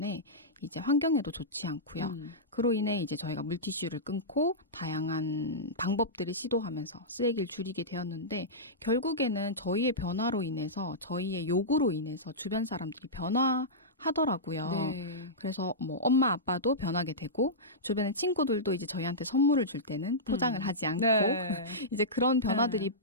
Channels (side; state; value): both; normal; correlation -0.14